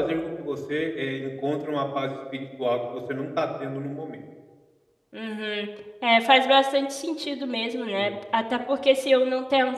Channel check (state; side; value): identical; both; correlation 1.00